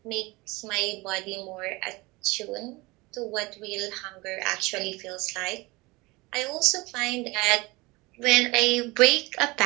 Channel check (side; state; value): left; quieter; 23.4 dB